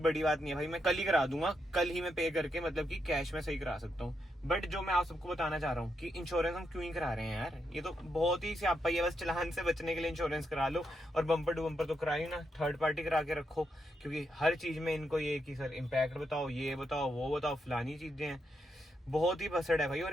बात नहीं है भाई, मैं कल ही करा दूंगा, कल ही मैं पे करके, मतलब कि कैश में सही करा सकता हूँ। बट जो मैं आप सबको बताना चाह रहा हूँ कि इंश्योरेंस हम क्यों ही करा रहे हैं यार, ये तो बहुत ही स्यापा है। बस चलान से बचने के लिए इंश्योरेंस करा लो, और बम्पर टू बम्पर तो कराई ना, थर्ड पार्टी करा के रखो, क्योंकि हर चीज में इनको ये कि सर इम्पैक्ट बताओ, ये बताओ, वो बताओ, फलानी चीजें हैं। बहुत ही बसड़ है भाई,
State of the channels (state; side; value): normal; both; correlation 0.81